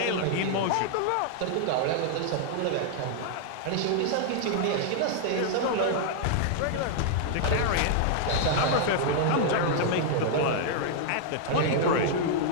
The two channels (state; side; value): different; both; correlation -0.01